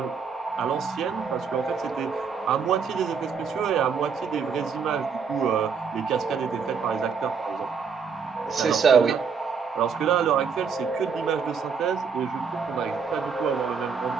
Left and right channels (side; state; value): left; quieter; 5.9 dB